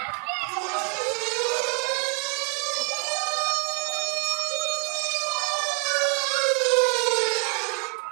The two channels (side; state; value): left; quieter; 32.4 dB